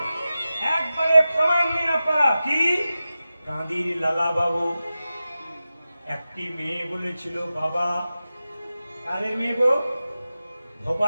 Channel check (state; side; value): inverted; both; correlation -0.94